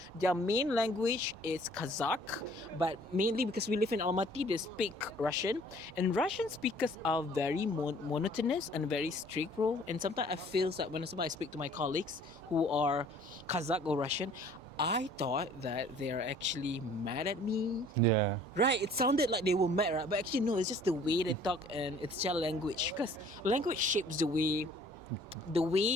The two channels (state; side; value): normal; both; correlation 0.54